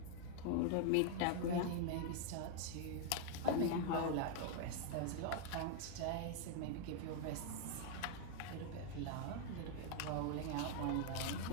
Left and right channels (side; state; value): both; different; correlation 0.01